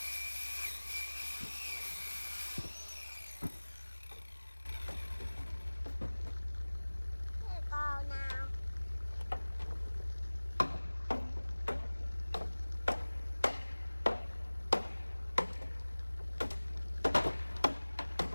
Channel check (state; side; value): inverted; both; correlation -1.00